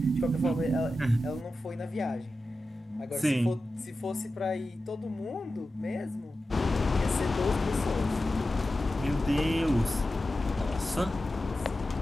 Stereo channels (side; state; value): both; normal; correlation 0.93